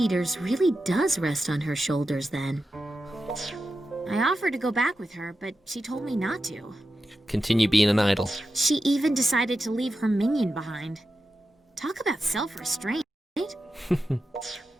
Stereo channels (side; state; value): both; normal; correlation 0.90